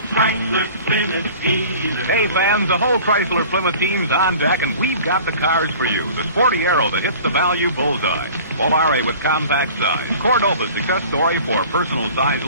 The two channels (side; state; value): both; inverted; correlation -0.44